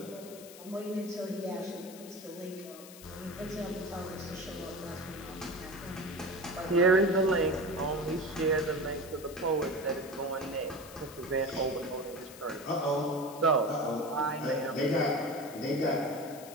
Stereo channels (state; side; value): noise; left; hiss, 17 dB below the sound